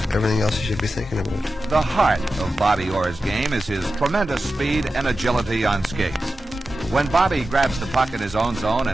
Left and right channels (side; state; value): both; normal; correlation 0.93